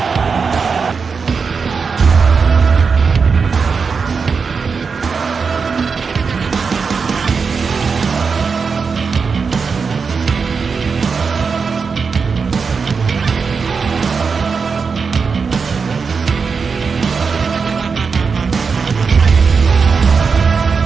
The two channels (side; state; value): left; quieter; 5.3 dB